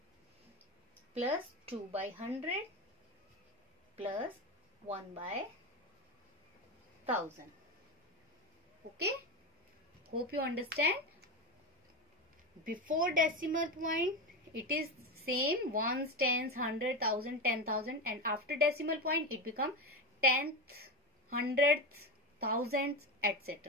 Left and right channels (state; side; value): normal; both; correlation 0.18